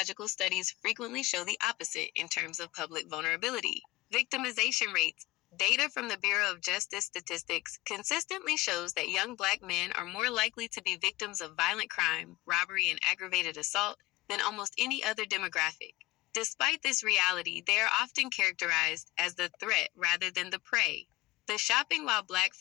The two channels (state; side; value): quieter; right; 19.4 dB